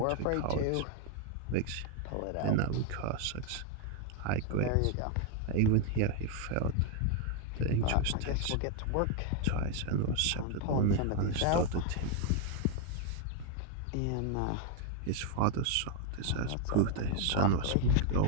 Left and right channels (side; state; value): both; different; correlation 0.00